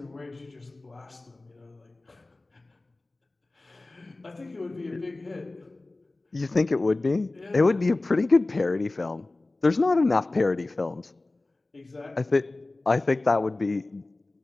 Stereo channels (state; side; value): quieter; right; 3.0 dB